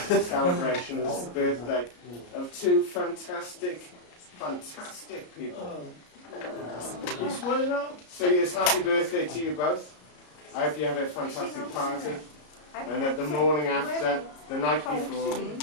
in celebration of the birthday of two fantastic people. So yes, happy birthday to you both. I hope you have a fantastic party. And that the morning after, the night before,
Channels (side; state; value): right; late; 33 ms